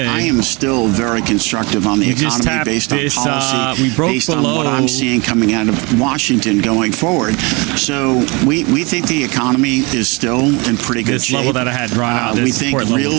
I am still very constructive on the economy based on policy, based on what I'm seeing coming out of Washington going forward. So we think the economy is still in pretty good shape. This level that I had drawn out, we think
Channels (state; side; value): quieter; left; 27.9 dB